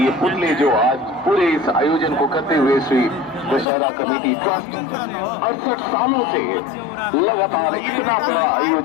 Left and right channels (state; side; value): drops out; right; at 3.7 s